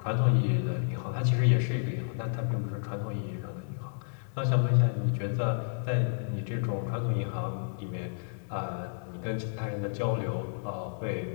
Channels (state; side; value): silent; right; digital silence